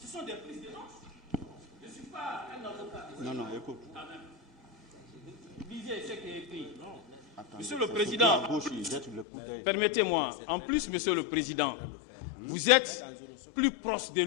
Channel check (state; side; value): drops out; right; at 9.2 s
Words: Ce sont des prises de notes. Je ne suis pas un avocat. Non, écoute. Lisez ce qui est écrit. Monsieur le Président, permettez-moi, en plus, Monsieur le Président, vous êtes plus proche de